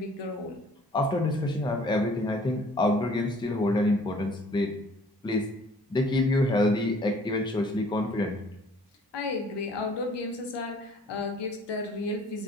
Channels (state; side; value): normal; both; correlation 0.56